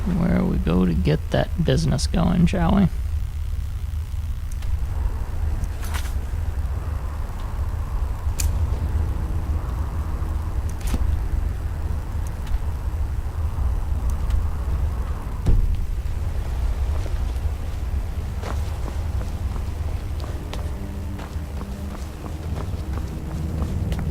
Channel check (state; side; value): identical; both; correlation 1.00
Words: Where we go to get that business going, shall we?